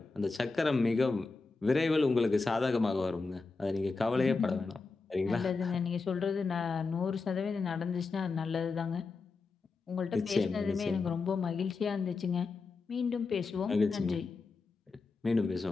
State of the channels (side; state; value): right; quieter; 4.1 dB